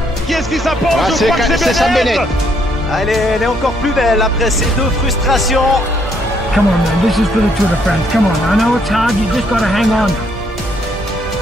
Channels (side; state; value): both; normal; correlation 0.70